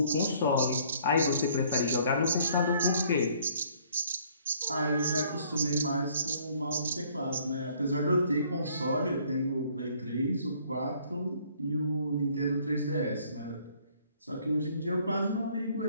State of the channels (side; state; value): both; inverted; correlation -0.61